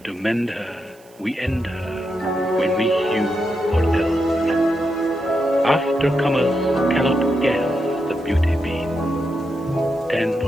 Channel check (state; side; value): noise; right; hiss, 29 dB below the sound